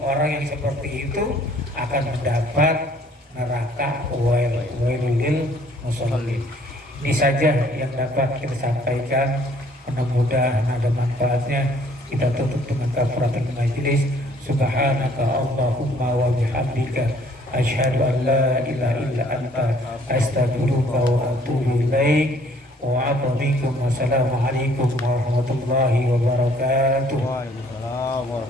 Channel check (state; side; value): normal; both; correlation 0.60